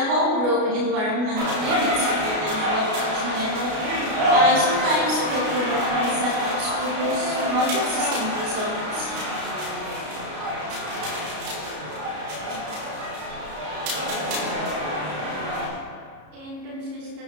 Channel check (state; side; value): late; left; 33 ms